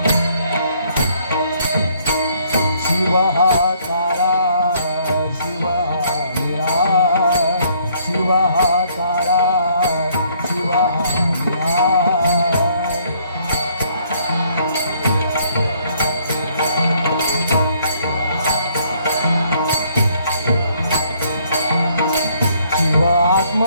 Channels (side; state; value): both; inverted; correlation -0.65